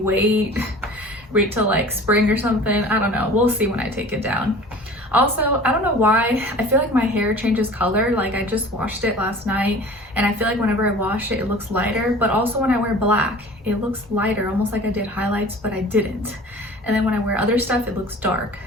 wait till like spring or something? I don't know. We'll see when I take it down. Also, I don't know why, I feel like my hair changes color. Like I just washed it last night and I feel like whenever I wash it, it looks lighter. But also when I wear black, it looks lighter, almost like I did highlights, but I didn't. And then when I wear other stuff, it looks dark.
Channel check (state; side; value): normal; both; correlation 0.43